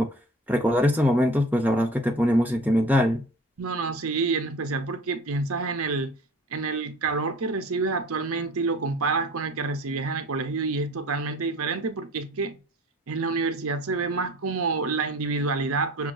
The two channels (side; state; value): both; normal; correlation 0.42